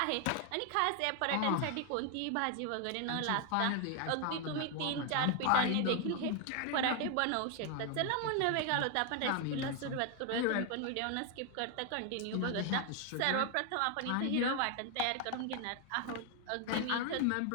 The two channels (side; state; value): both; different; correlation 0.01